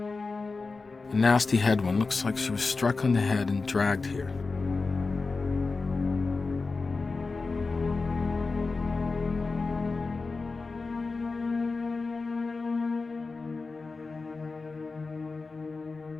A nasty head one. Looks like she was struck on the head and dragged here.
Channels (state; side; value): quieter; right; 4.0 dB